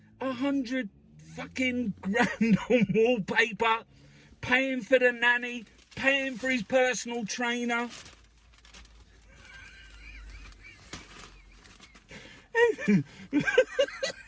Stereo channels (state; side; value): identical; both; correlation 1.00